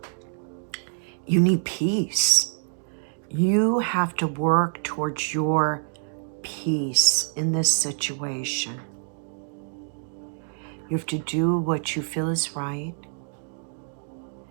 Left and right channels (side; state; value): left; silent; digital silence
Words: you need peace. You have to work towards your peace in this situation. You have to do what you feel is right.